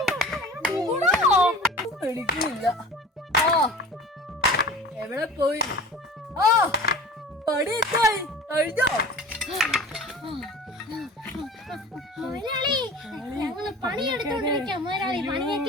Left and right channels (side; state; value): both; normal; correlation 0.39